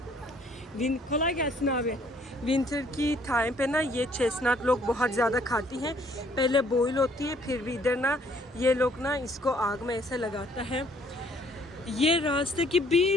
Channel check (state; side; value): normal; both; correlation 0.62